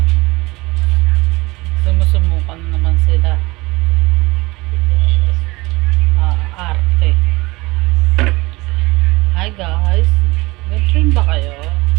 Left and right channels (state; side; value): quieter; left; 22.0 dB